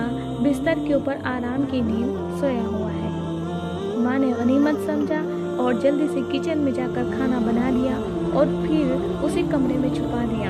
بستر کے اوپر آرام کی نیند سویا ہوا ہے۔ ماں نے غنیمت سمجھا اور جلدی سے کچن میں جا کر کھانا بنا لیا اور پھر اسے کمرے میں چھپا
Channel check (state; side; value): identical; both; correlation 1.00